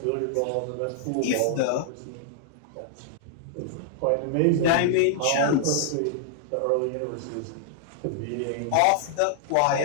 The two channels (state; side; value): different; both; correlation -0.01